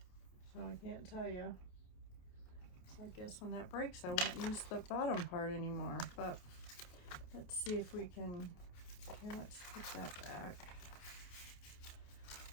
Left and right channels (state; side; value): late; right; 28 ms